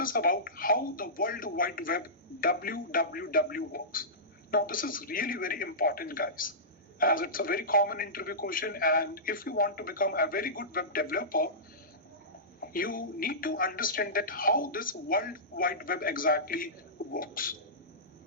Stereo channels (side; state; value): both; normal; correlation -0.19